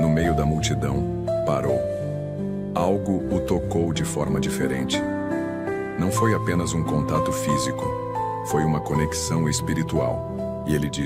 no meio da multidão, parou. Algo o tocou de forma diferente. Não foi apenas um contato físico, foi uma conexão espiritual. E ele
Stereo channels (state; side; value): identical; both; correlation 1.00